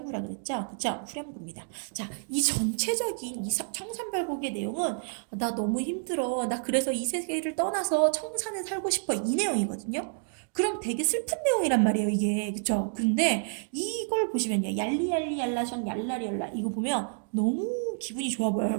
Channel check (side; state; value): left; silent; digital silence